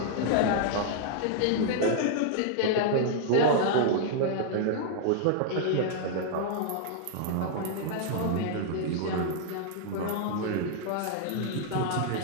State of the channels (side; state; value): both; different; correlation -0.01